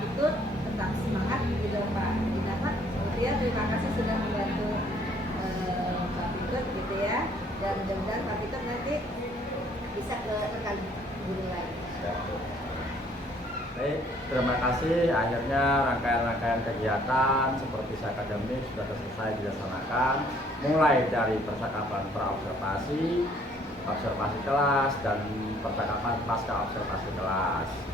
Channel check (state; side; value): normal; both; correlation 0.61